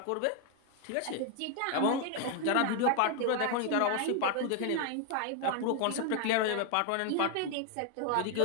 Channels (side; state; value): both; different; correlation 0.01